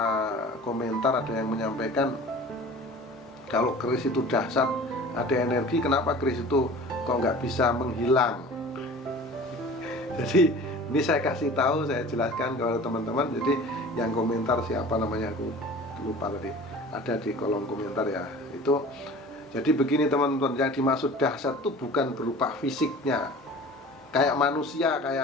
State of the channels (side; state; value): both; normal; correlation 0.42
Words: komentar, ada yang menyampaikan kalau keris itu dahsyat, ada energi, kenapa keris itu kok nggak bisa menghilang? Jadi ini saya kasih tahu, saya jelaskan kepada teman-teman. Jadi yang komentar siapa namanya, aku lupa tadi, ada di kolom komentar ya. Itu jadi begini teman-teman, yang dimaksud dahsyat itu bukan berupa fisiknya, kayak manusia,